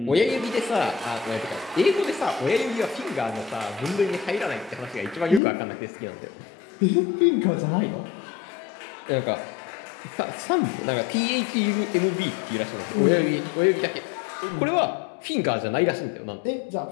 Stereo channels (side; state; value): right; drops out; at 5.4 s